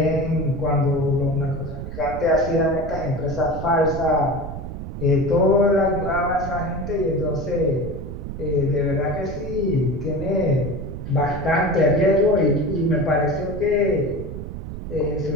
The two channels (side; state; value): right; noise; rumble, 8 dB below the sound